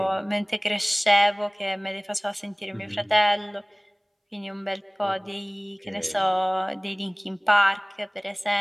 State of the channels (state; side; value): identical; both; correlation 1.00